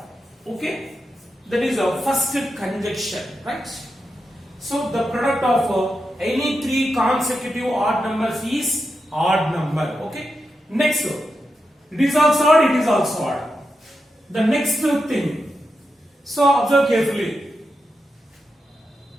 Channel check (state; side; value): normal; both; correlation 0.87